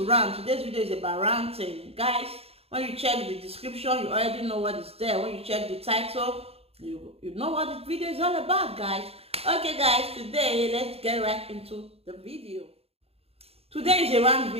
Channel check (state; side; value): late; left; 0.29 ms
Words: rant. Today's video is about ranting, guys. When you check the description, you already know what is there. When you check the title, you know what the video is all about, guys. Okay, guys, today let's get right into the video. Today is a rant